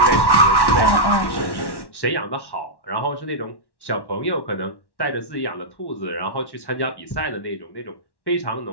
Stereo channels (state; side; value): late; right; 1.1 ms